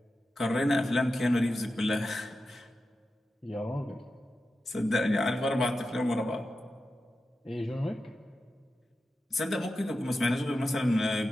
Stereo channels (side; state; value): both; normal; correlation 0.91